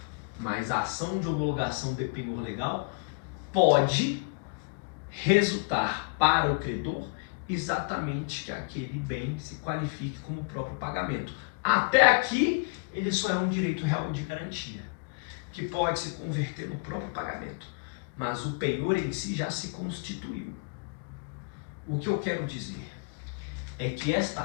Mas a ação de homologação de penhor legal pode resultar para o credor exatamente que aquele bem se qualifique como próprio pagamento. Até aqui, ele só é um direito real de garantia, que pode se converter no próprio pagamento. Mas o penhor em si já se constituiu. O que eu quero dizer é que esta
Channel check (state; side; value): quieter; right; 35.0 dB